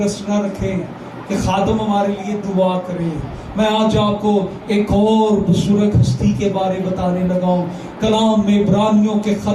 نہ رکھیں کہ خادم ہمارے لیے دعا کرے. میں آج آپ کو ایک اور بزرگ ہستی کے بارے بتانے لگا ہوں. کلام میں عبرانیوں کے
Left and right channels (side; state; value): both; identical; correlation 1.00